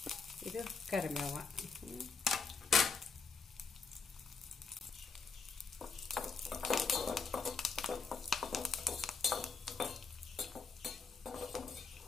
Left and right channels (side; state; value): right; quieter; 4.8 dB